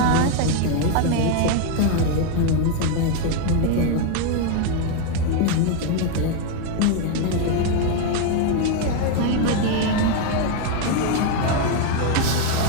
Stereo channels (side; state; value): both; different; correlation 0.01